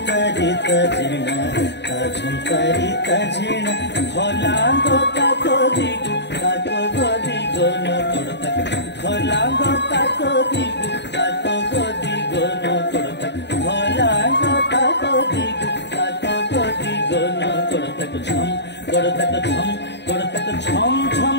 ঝেনা ঝংকারিতা ঝেনা ভলাঙ্গ তাকো দিগু তাকো গদিগো নকড়তা ভলাঙ্গ তাকো দিগু তাকো গদিগো নকড়তা ভলাঙ্গ তাকো দিগু তাকো গদিগো নকড়তা ঝম গড়তা ঝম গড়তা ঝম ঝম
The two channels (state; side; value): late; right; 0.50 ms